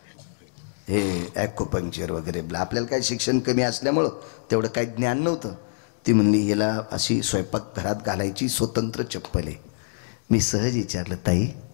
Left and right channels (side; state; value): right; silent; digital silence